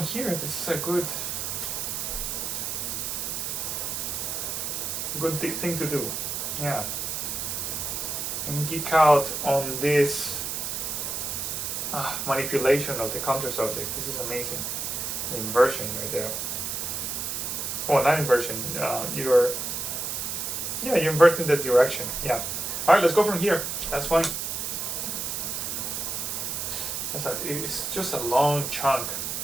This is a good thing to do. Yeah. And geek out on this manipulation of the counter subject. This is amazing. The inversion right there. Oh, not inversion. You're inverting the direction. Yeah. All right, let's go from here. That's fine. It's just a long chunk,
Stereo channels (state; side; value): noise; right; hiss, 3 dB below the sound